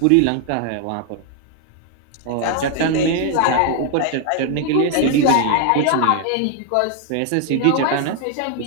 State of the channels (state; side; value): different; both; correlation 0.00